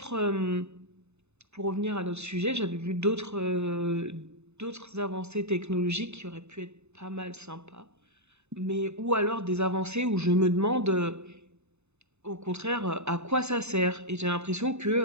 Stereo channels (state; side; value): late; left; 0.81 ms